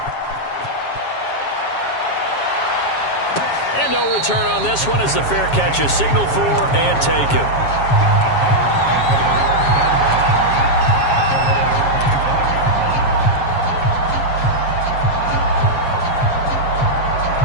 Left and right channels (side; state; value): right; late; 7.3 ms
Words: And no return on this one as the fair catch is signaled for and taken.